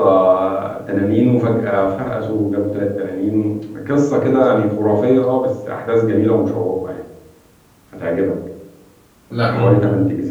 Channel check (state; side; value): identical; both; correlation 1.00